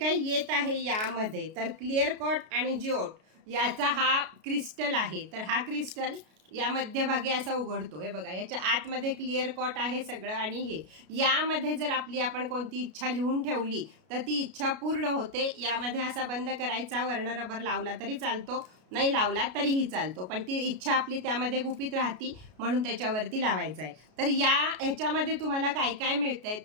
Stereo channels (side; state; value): left; late; 33 ms